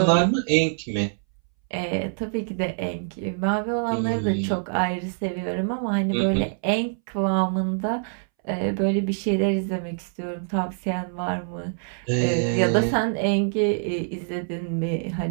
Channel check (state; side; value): silent; left; 62 dB below the other